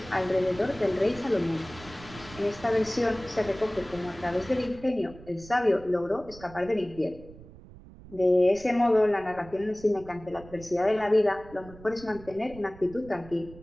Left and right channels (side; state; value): right; noise; rumble, 19 dB below the sound